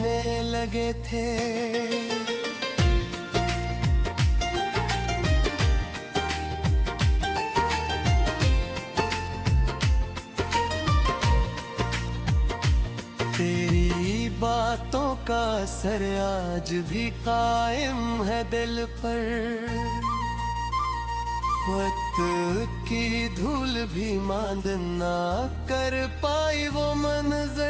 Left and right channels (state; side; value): identical; both; correlation 1.00